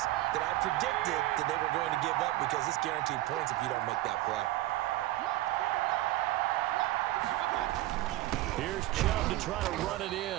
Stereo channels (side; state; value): left; quieter; 16.6 dB